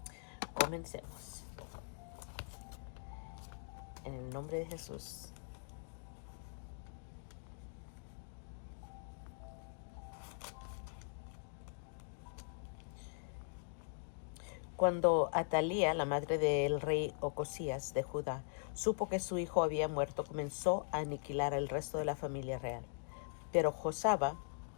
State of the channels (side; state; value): right; silent; digital silence